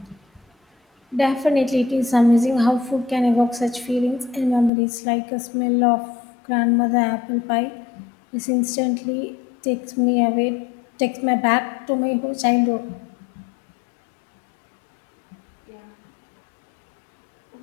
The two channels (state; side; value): drops out; right; at 4.7 s